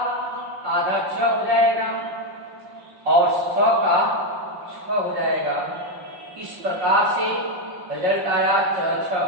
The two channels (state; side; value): late; left; 5.5 ms